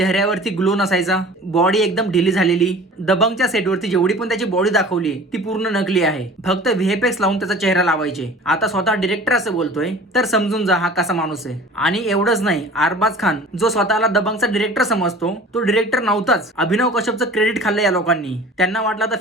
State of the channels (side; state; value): both; normal; correlation 0.43